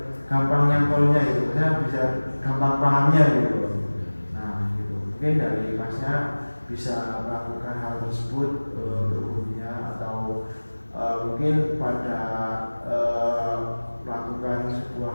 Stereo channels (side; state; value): both; inverted; correlation -1.00